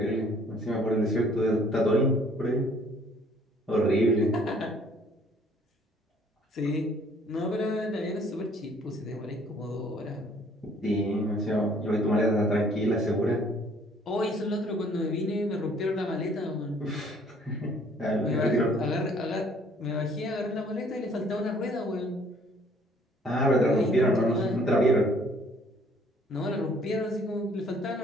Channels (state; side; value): normal; both; correlation 0.59